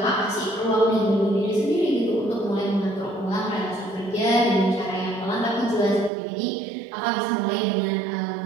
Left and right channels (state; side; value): drops out; left; at 6.1 s